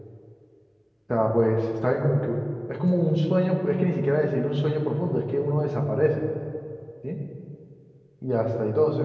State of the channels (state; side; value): identical; both; correlation 1.00